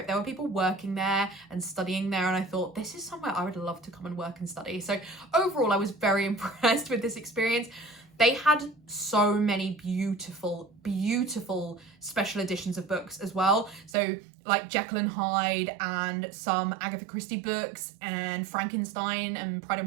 there were people working there and studying there, and I thought, this is somewhere I would love to come and work and study. So overall, I was very impressed with this experience. They had so many beautiful special editions of books as well. So like Jekyll and Hyde and some Agatha Christie books and Frankenstein and Pride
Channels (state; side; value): drops out; left; at 14.0 s